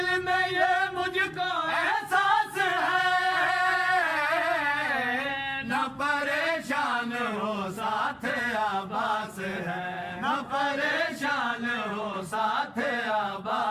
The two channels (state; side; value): identical; both; correlation 1.00